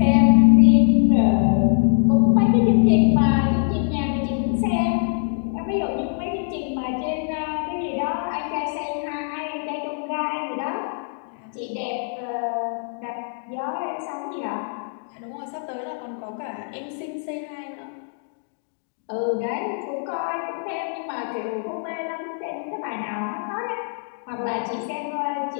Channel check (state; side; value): silent; right; digital silence